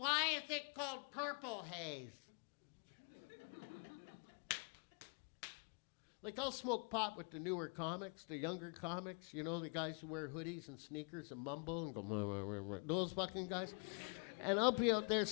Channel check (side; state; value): right; quieter; 38.4 dB